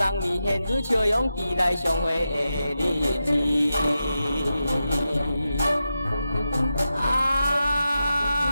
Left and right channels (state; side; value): inverted; both; correlation -0.89